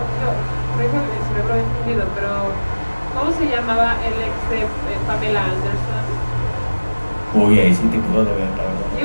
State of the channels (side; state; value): both; inverted; correlation -1.00